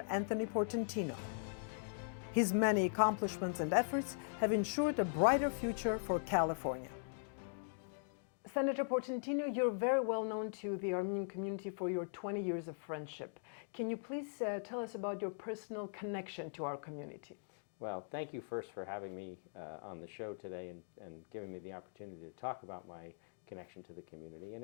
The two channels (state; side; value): silent; right; digital silence